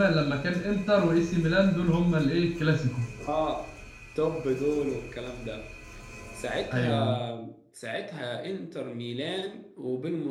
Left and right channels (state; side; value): identical; both; correlation 1.00